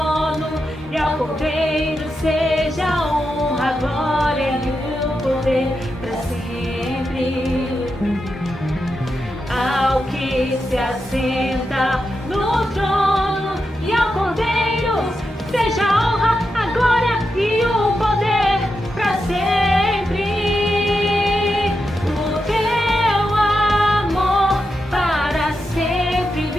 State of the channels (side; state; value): both; normal; correlation 0.87